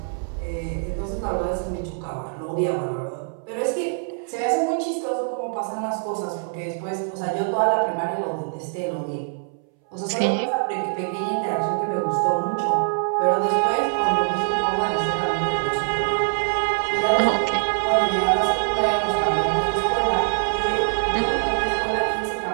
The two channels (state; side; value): silent; left; 63 dB below the other